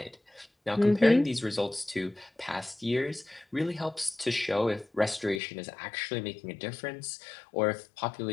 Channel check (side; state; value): right; drops out; at 5.4 s